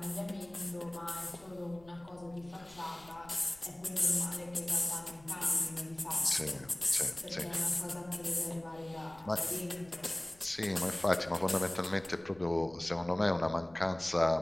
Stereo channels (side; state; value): left; noise; rumble, 24 dB below the sound